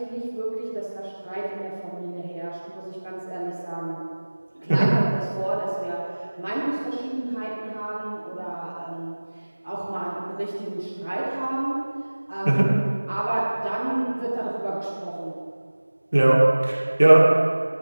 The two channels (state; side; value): inverted; both; correlation -1.00